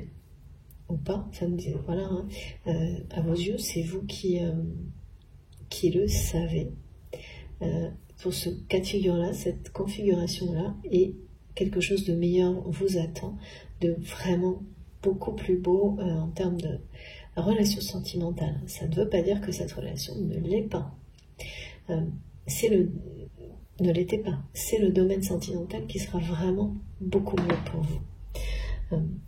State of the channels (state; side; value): identical; both; correlation 1.00